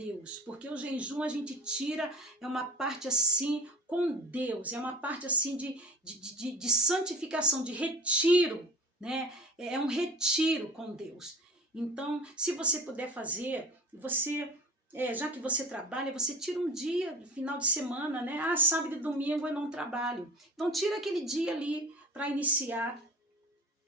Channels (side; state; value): both; normal; correlation 0.37